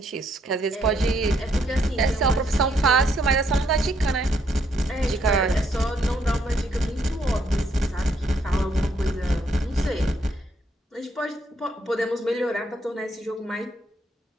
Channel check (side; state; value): both; normal; correlation 0.72